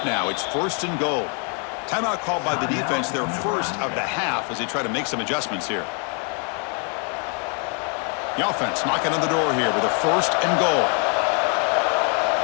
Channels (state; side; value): quieter; right; 39.2 dB